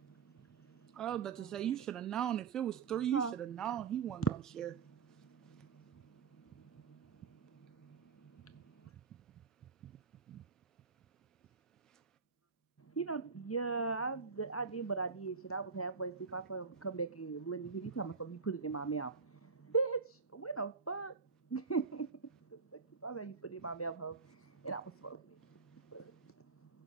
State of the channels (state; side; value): quieter; left; 5.3 dB